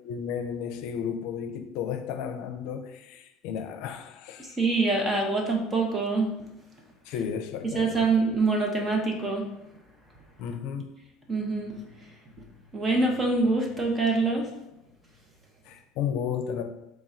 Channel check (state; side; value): normal; both; correlation 0.56